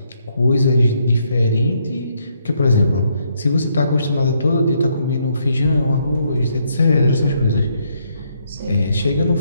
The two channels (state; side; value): inverted; both; correlation -0.73